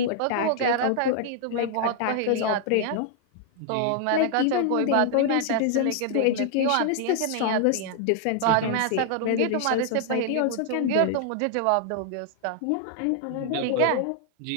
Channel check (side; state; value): both; different; correlation 0.00